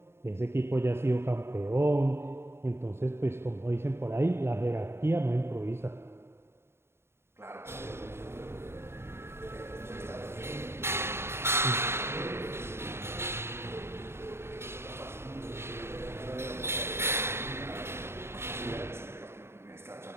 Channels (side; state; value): left; late; 0.12 ms